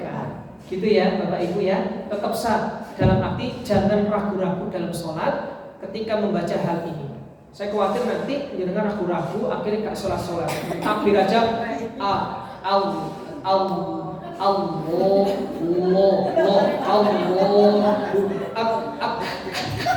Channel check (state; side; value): identical; both; correlation 1.00